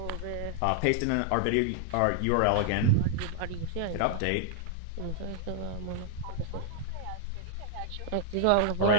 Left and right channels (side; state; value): both; different; correlation 0.00